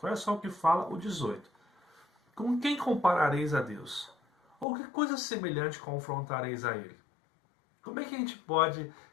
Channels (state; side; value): drops out; right; at 4.7 s